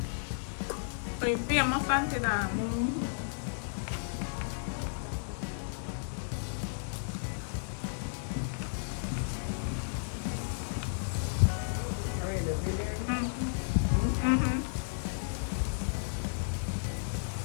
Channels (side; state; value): right; silent; digital silence